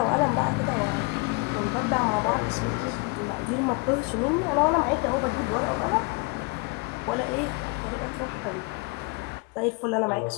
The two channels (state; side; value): quieter; right; 29.8 dB